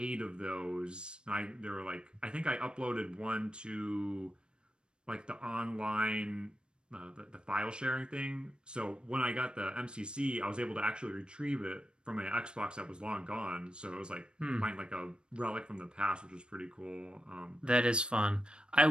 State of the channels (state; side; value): late; left; 0.053 ms